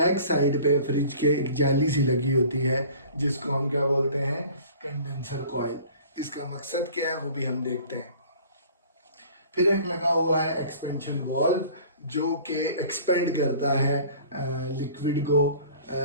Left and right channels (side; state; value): both; inverted; correlation -0.47